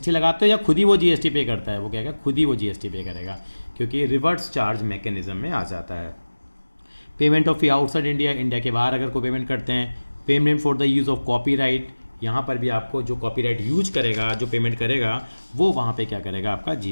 लगाते हो, या खुद ही वो जीएसटी पे करता है? वो कहेगा खुद ही वो जीएसटी पे करेगा, क्योंकि रिवर्स चार्ज मैकेनिज्म में आ जाता है। Payment of fee outside India, India के बाहर अगर कोई पेमेंट करते हैं। Payment for the use of copyright, यहाँ पर भी आपको जो कॉपीराइट यूज करेगा, जो पेमेंट करेगा, वो वहाँ पे क्या करेगा, आपका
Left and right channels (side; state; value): both; inverted; correlation -1.00